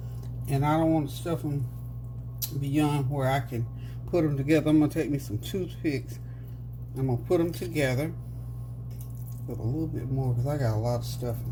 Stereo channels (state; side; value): identical; both; correlation 1.00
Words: And I don't want to stuff them beyond where I can put them together. I'm going to take me some toothpicks. I'm going to put them together. Put a little bit more because I got a lot of stuffing.